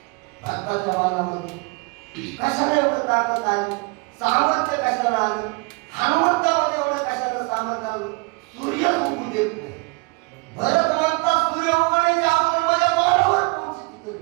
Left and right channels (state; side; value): quieter; left; 29.6 dB